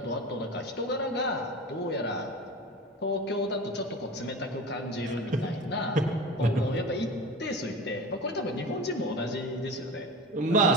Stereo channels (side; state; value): both; normal; correlation 0.32